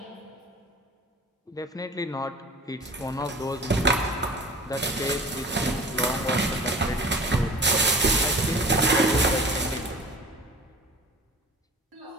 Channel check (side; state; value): both; normal; correlation 0.41